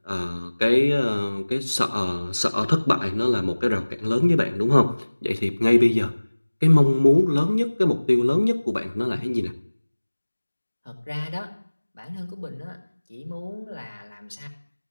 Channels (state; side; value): inverted; both; correlation -1.00